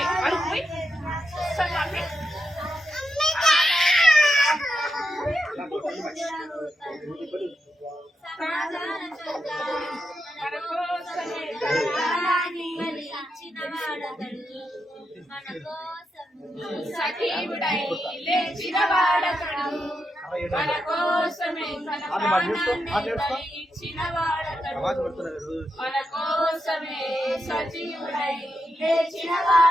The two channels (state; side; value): normal; both; correlation 0.85